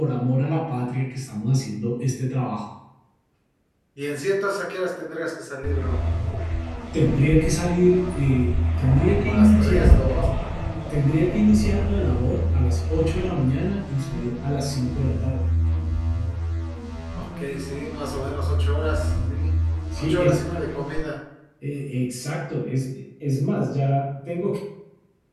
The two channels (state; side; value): identical; both; correlation 1.00